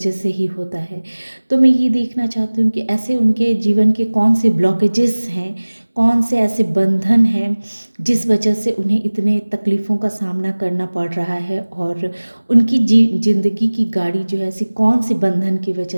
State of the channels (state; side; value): inverted; both; correlation -1.00